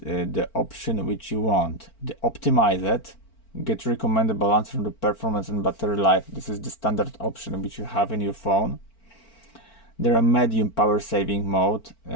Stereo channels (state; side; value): late; right; 4.4 ms